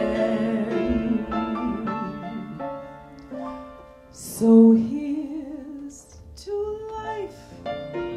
So here's to life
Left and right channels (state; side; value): identical; both; correlation 1.00